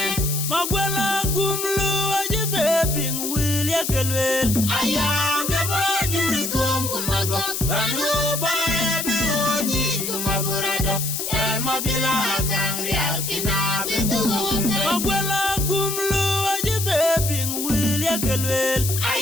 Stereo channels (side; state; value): left; noise; hiss, 3 dB below the sound